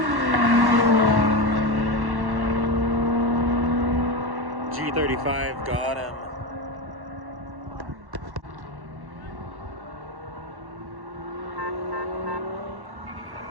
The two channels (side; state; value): left; late; 1.1 ms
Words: G35 got him.